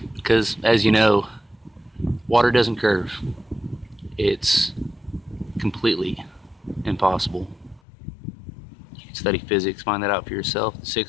Because, as you know, water doesn't curve. It's completely impossible. You can study physics, find that out for yourself. The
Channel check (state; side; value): drops out; right; at 7.8 s